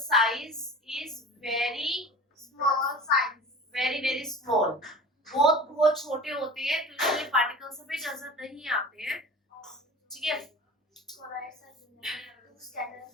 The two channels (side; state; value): both; normal; correlation 0.38